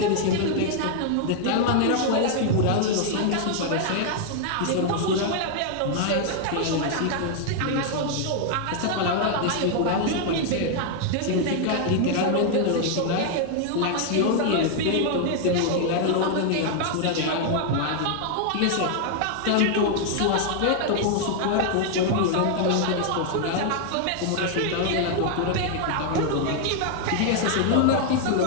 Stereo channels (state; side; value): different; both; correlation 0.00